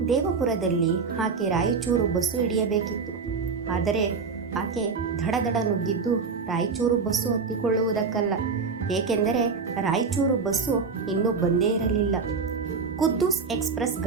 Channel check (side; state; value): left; quieter; 5.1 dB